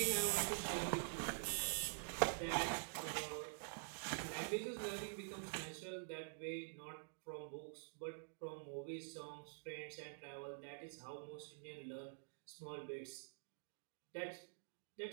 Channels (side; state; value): left; silent; digital silence